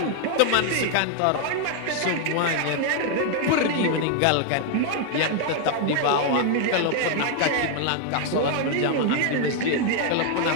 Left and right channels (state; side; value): different; both; correlation 0.00